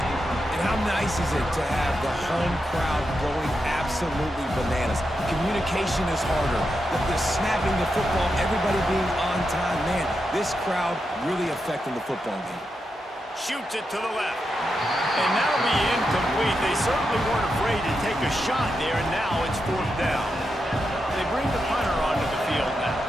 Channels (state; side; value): normal; both; correlation 0.86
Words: And how nice is it to have the home crowd going absolutely bananas? Communication is harder. The snapping the football, everybody being on time. Man, this crowd really affecting the football game. Shoots it to the left. And that'll be incomplete. They certainly weren't afraid to take a shot there, and now it's fourth down. They bring the punter onto the field now.